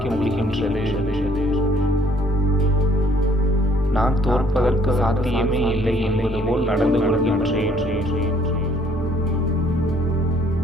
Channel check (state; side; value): normal; both; correlation 0.62